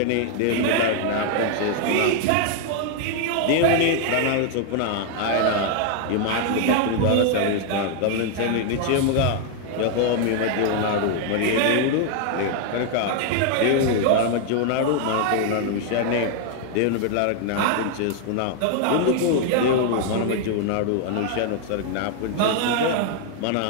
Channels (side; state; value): both; different; correlation 0.00